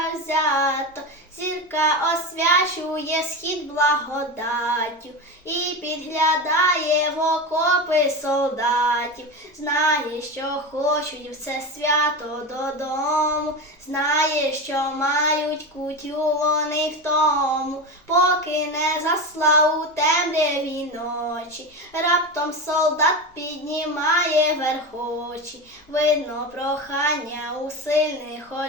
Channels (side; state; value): both; normal; correlation 0.21